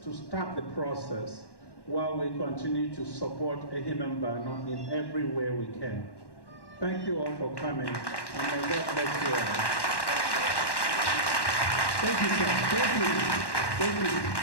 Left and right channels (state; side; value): late; right; 1.1 ms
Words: to start the process while we continue to support Ehimembano in every way we can. Thank you all for coming, and may God bless you all. Thank you, sir. Thank you. Thank